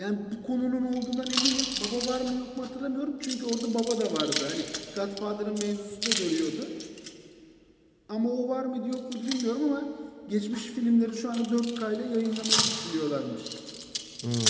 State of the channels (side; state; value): both; identical; correlation 1.00